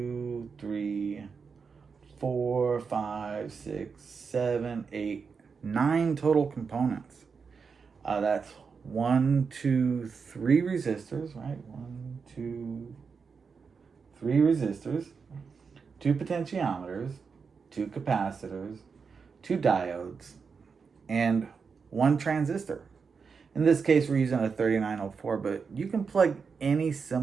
3, 4, 5, 6, 7, 8, 9 total components. That's 1, 2, 3 resistors, right? 1, 2, 3 resistors, 2 potentiometers, 2 capacitors, 2 diodes, and 1 transistor. In this case, we're using a 3904, but you can plug any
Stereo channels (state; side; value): quieter; left; 5.5 dB